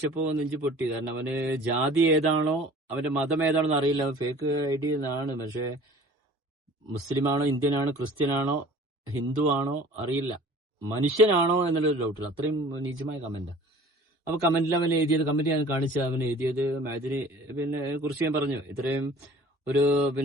നെഞ്ചു പൊട്ടി. കാരണം അവന് ജാതി ഏതാണോ അവന്റെ മതം ഏതാണെന്ന് അറിയില്ല. ഫേക്ക് ഐഡി എന്നാണ്. പക്ഷെ മുസ്ലിമാണോ, ഇന്ത്യനാണോ, ക്രിസ്ത്യനാണോ, ഹിന്ദു ആണോ അറിയില്ല. മനുഷ്യനാണോ എന്നുള്ളൊരു ഡൗട്ടില്ല. അത്രയും നീചമായ കമന്റാ. അപ്പൊ കമന്റിൽ അവൻ എഴുതിയത്, കമന്റ് ഞാൻ കാണിച്ച അവൻ എഴുതിയത് മഅദനി പിന്നെ കുറിച്ച് ഞാൻ പറഞ്ഞു. ഇത്രയും ഒരു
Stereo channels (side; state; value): both; normal; correlation 0.47